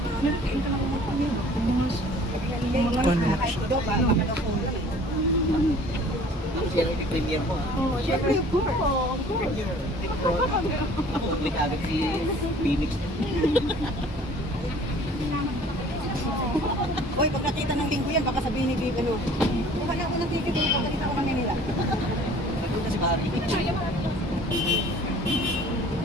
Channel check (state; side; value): normal; both; correlation 0.50